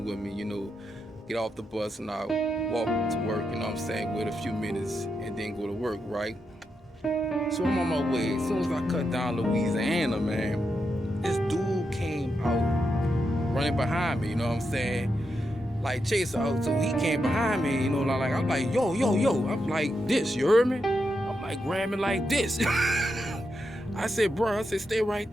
with me, get off the bus and I walk to work, you know what I'm saying? Wait a few minutes and then go to work, right? So I'm on my way. As soon as I cut down Louisiana, man, this dude came out running behind me, you know what I'm saying? Like chase out. So he came behind me, I'm like, yo, yo, yo. I'm like this, you heard me? I'm like grabbing like this. I said, bro, I said, stay right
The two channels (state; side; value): normal; both; correlation 0.85